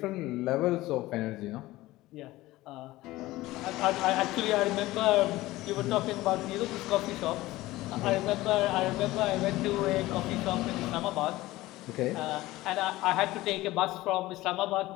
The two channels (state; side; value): quieter; right; 17.9 dB